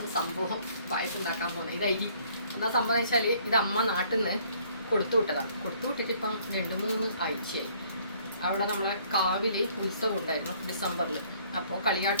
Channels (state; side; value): inverted; both; correlation -0.61